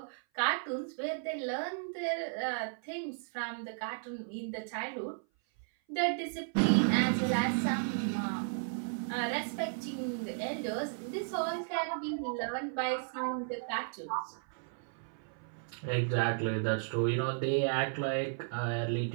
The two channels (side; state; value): left; silent; 55 dB below the other